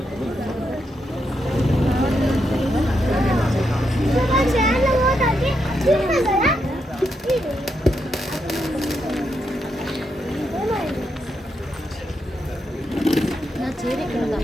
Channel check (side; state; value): both; normal; correlation 0.82